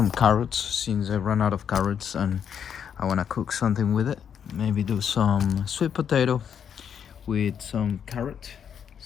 carrots since I ran out of carrots and I want to cook something with it. Maybe do some sweet potato with some carrot.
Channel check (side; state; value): right; quieter; 8.1 dB